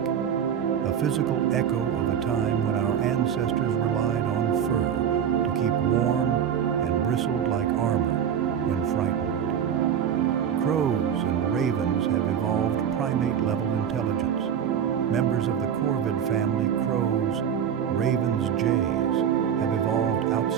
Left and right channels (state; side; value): quieter; left; 8.5 dB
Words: a physical echo of a time when our ancestors relied on fur to keep warm and bristled like armor when frightened. Crows and ravens have evolved primate-level intelligence. Members of the corvid family, crows, ravens, jays, have evolved